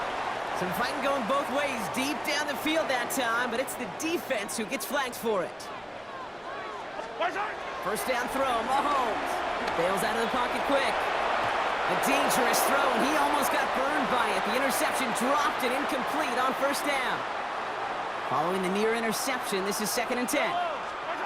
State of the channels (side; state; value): both; identical; correlation 1.00